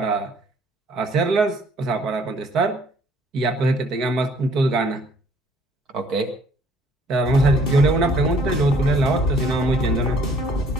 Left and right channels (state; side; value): normal; both; correlation 0.60